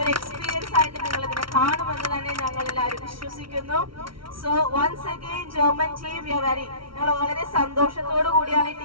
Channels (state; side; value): late; left; 0.74 ms